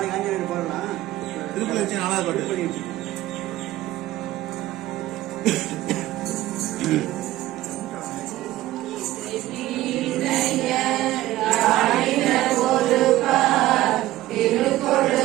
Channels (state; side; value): quieter; left; 15.7 dB